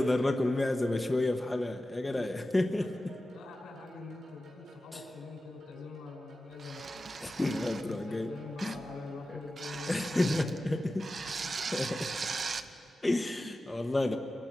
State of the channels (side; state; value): both; normal; correlation 0.93